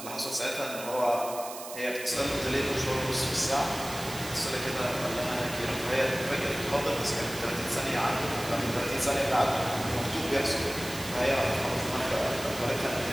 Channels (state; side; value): noise; right; hiss, 11 dB below the sound